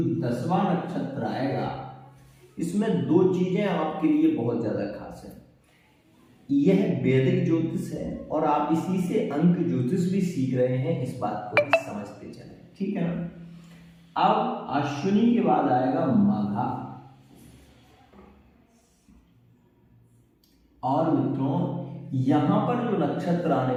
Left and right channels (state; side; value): identical; both; correlation 1.00